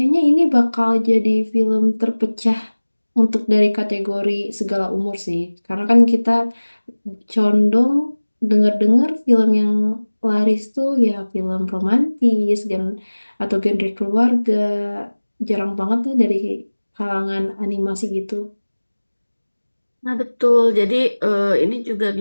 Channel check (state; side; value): inverted; both; correlation -1.00